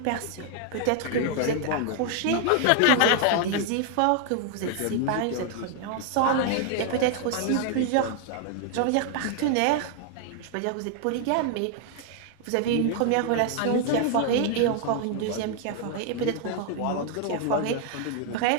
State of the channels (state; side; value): different; both; correlation 0.00